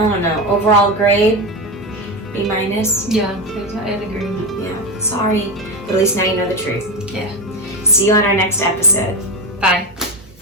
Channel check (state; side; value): normal; both; correlation 0.16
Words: don't know, overall grade, B-. Yeah, I'd agree. Yeah, sorry. But at least now you know the truth. Yeah. See you on our next episode. Bye.